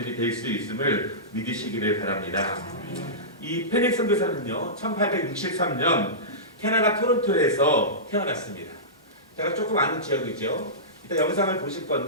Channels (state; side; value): normal; both; correlation -0.19